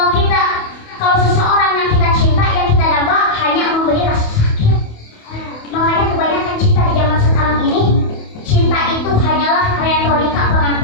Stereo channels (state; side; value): late; right; 28 ms